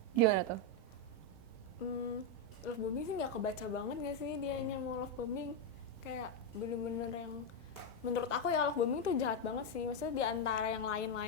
Gimana tuh? Love bombing sih nggak kebaca banget nggak sih dianya mau love bombing. Kayak bener-bener yang menurut aku ya love bombing tuh jahat banget sih. Maksudnya di antara yang lain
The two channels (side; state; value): left; late; 1.4 ms